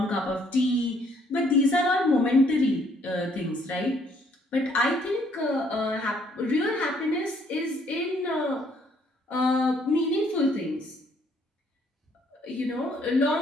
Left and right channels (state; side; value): normal; both; correlation 0.65